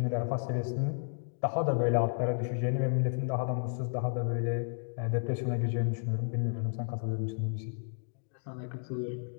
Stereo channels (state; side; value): silent; right; digital silence